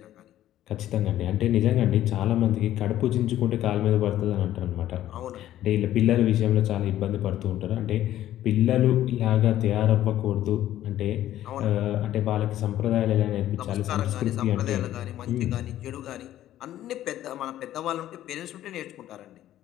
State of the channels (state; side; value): quieter; right; 12.9 dB